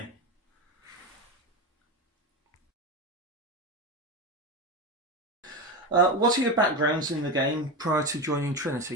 What are your backgrounds in the game prior to joining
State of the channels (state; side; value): normal; both; correlation 0.18